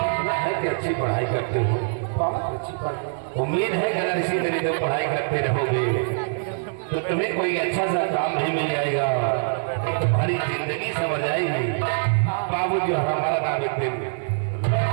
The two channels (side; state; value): left; silent; digital silence